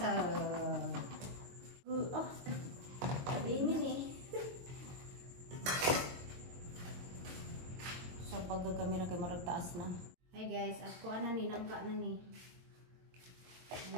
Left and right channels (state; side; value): late; left; 22 ms